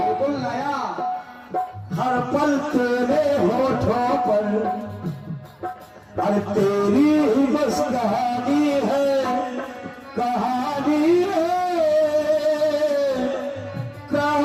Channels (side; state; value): both; identical; correlation 1.00